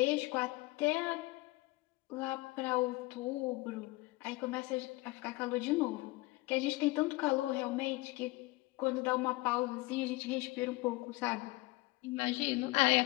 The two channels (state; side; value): quieter; right; 21.5 dB